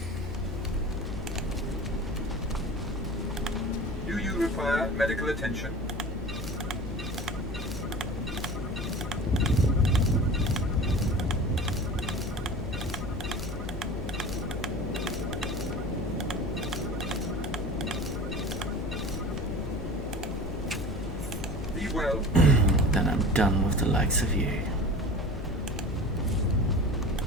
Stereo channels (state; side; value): normal; both; correlation 0.37